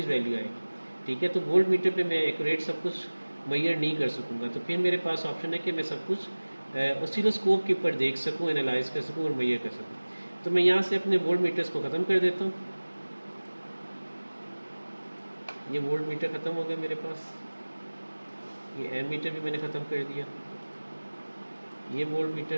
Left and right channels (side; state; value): both; inverted; correlation -1.00